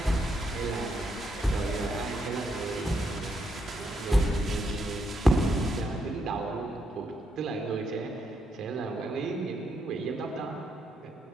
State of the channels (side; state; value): both; normal; correlation 0.78